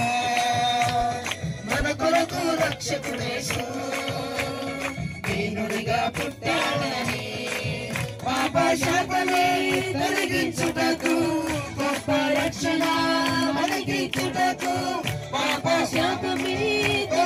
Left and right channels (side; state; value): both; identical; correlation 1.00